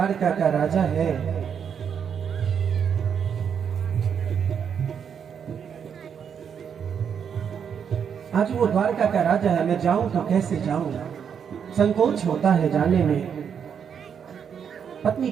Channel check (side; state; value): left; quieter; 7.5 dB